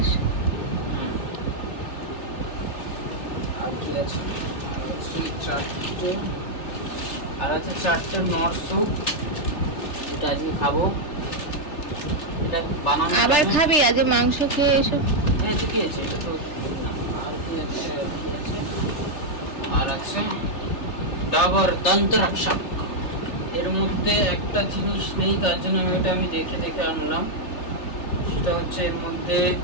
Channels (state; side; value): late; right; 3.3 ms